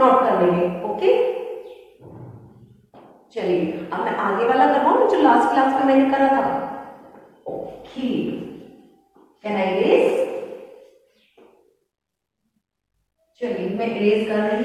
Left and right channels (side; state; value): both; identical; correlation 1.00